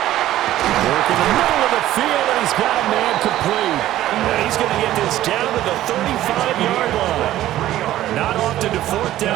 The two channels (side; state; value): left; quieter; 13.9 dB